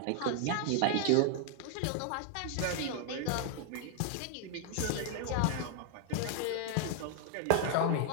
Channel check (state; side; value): different; both; correlation 0.00